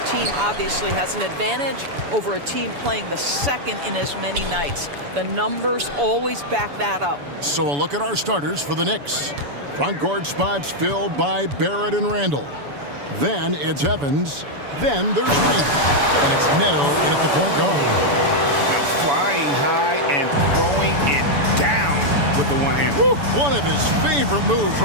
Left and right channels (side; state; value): left; late; 7.0 ms